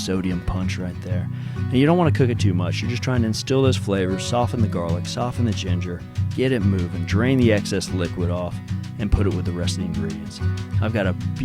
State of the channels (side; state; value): both; identical; correlation 1.00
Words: punch right there. And you don't want to cook it too much. You're just trying to instill those flavors, soften the garlic, soften the ginger, get it moving, drain the excess liquid off, and put it with the rest of the ingredients. I've got a